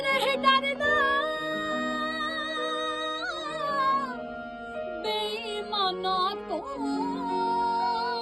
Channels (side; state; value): both; identical; correlation 1.00